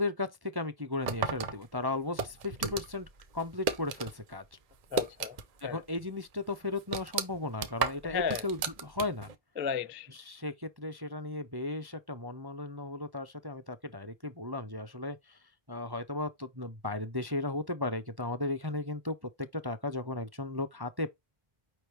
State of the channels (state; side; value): late; left; 1.7 ms